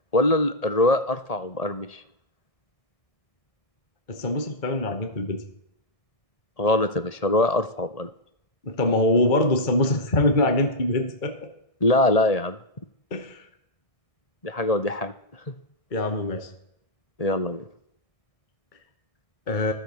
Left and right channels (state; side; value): late; right; 1.6 ms